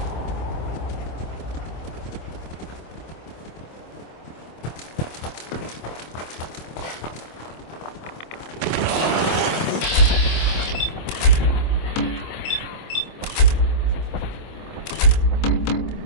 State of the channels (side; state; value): right; late; 25 ms